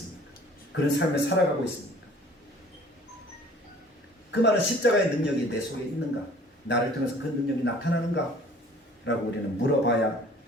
그런 삶을 살아가고 있습니다. 그 말은 십자가의 능력이 내 속에 있는가? 나를 통해서 그 능력이 나타나는가? 라고 우리는 물어봐야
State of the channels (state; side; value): normal; both; correlation 0.51